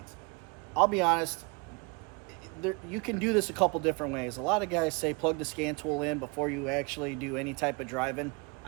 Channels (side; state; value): left; quieter; 30.6 dB